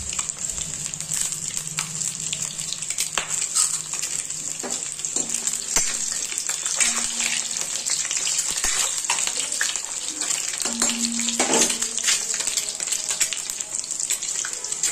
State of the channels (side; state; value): both; identical; correlation 1.00